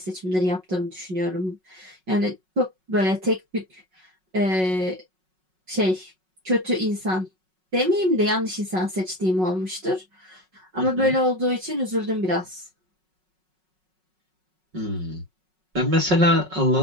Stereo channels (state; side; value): late; left; 5.4 ms